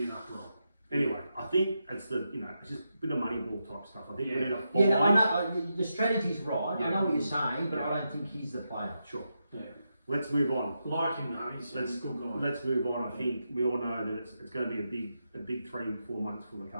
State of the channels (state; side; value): inverted; both; correlation -0.86